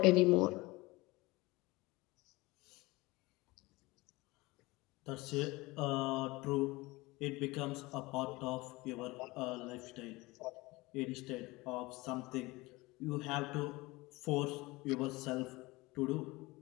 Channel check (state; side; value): quieter; right; 22.0 dB